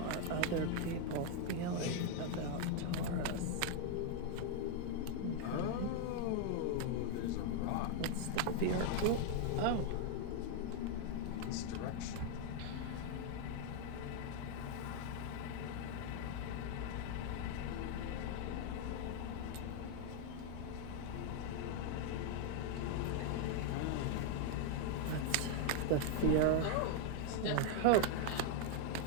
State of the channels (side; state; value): both; different; correlation 0.00